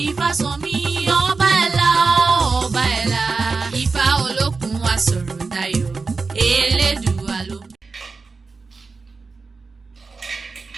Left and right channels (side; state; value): left; quieter; 4.3 dB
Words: Ifásànmí ọba ẹ̀la ọba ẹ̀la Ifá olókun asọ̀rọ̀dayọ̀ Elédùà ló.